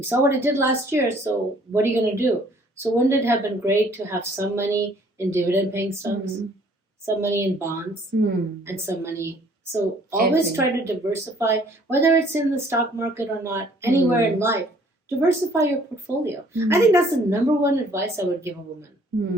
saw what it did last year, so what are you going to do? So wouldn't it have been great to have some money in dividend paying stocks, some money in bonds, and some money? So always try to diversify, whether it's in the stock market or not, anywhere in life. Diversify your portfolio. I think that's the number one advice I would give a woman,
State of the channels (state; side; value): normal; both; correlation 0.59